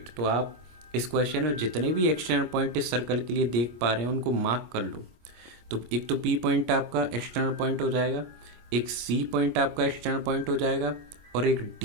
तो आप इस क्वेश्चन में जितने भी एक्सटर्नल पॉइंट इस सर्कल के लिए देख पा रहे हैं उनको मार्क कर लो. तो एक तो P पॉइंट आपका एक्सटर्नल पॉइंट हो जाएगा, एक C पॉइंट आपका एक्सटर्नल पॉइंट हो जाएगा और एक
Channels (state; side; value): late; left; 25 ms